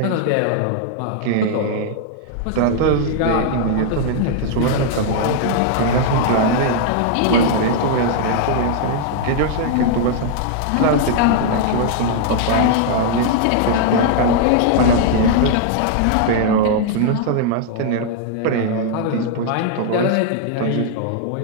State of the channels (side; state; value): both; different; correlation -0.01